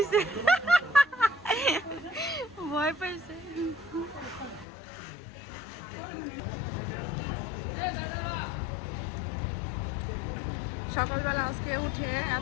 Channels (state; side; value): drops out; right; at 4.7 s